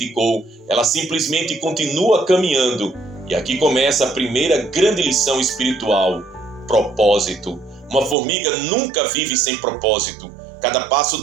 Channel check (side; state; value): left; drops out; at 8.2 s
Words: Ela simplesmente continua caminhando. E aqui começa a primeira grande lição espiritual: propósito. Uma formiga nunca vive sem propósito. Cada passo